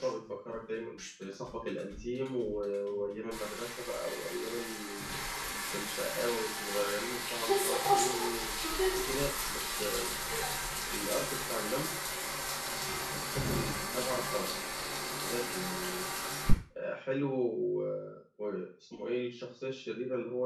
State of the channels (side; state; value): both; identical; correlation 1.00